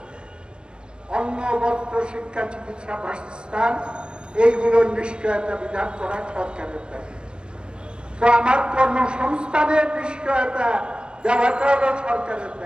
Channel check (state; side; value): late; left; 0.054 ms